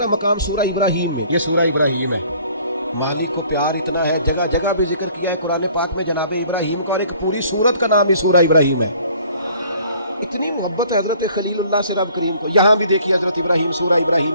مقام سورہ ابراہیم میں. یہ سورہ ابراہیم ہے، مالک کو پیار اتنا ہے، جگہ جگہ بھی ذکر کیا ہے قرآن پاک میں جناب ابراہیم کو، اور ایک پوری سورت کا نام ہی سورہ ابراہیم ہے. اتنی محبت ہے حضرت خلیل اللہ سے رب کریم کو. یہاں بھی دیکھیے حضرت ابراہیم سورہ ابراہیم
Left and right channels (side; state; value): both; inverted; correlation -0.56